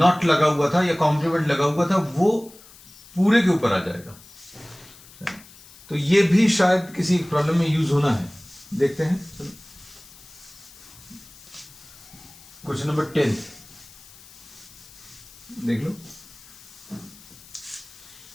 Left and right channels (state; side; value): noise; left; hiss, 22 dB below the sound